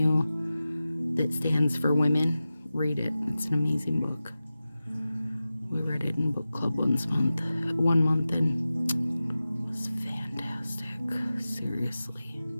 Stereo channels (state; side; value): inverted; both; correlation -0.95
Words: that stands for women, read it. It's an amazing book. We read it in book club one month, and it was fantastic. Seriously.